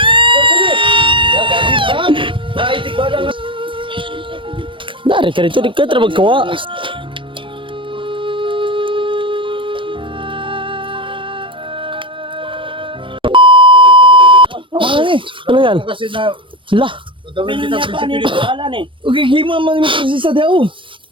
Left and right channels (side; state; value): left; late; 0.25 ms